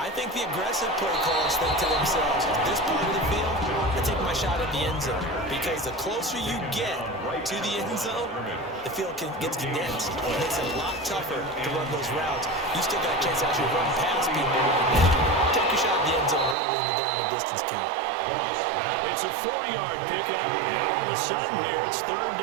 think the aggressive play callers think to themselves, this part of the field, I take my shot at the end zone. Because the closer you get to the end zone, the field gets condensed. It makes it a lot tougher to run those routes. You still got a chance to actually run past people right now. Take your shot at the end zone early in the down and distance count. It's a 4-yard pickup, and all of a sudden here, it's 3rd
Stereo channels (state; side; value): drops out; left; at 16.6 s